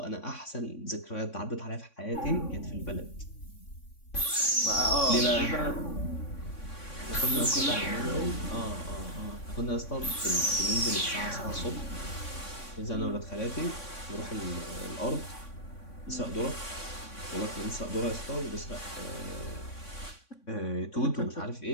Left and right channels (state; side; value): late; right; 3.6 ms